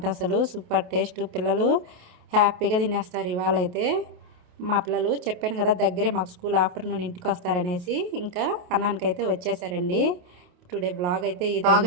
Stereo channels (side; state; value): left; late; 28 ms